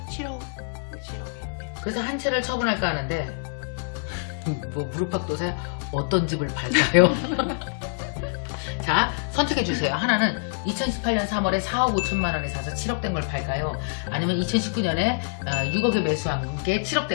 7억. 그래서 한 채를 처분할까 하는데 뭐 무릎팍도사야 어떤 집을 팔까요? 자, 선택해 주세요. 하나는 2018년 3월에 4억 5천만 원에 사서 7억 된 걸 팔까요? 아니면 2019년에 6억에 매수한 게 7억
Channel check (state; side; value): silent; right; 59 dB below the other